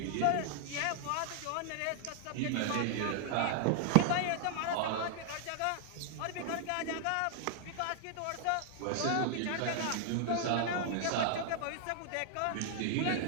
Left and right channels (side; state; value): both; different; correlation 0.00